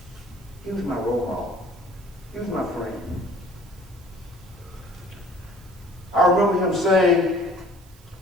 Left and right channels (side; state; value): right; noise; hiss, 26 dB below the sound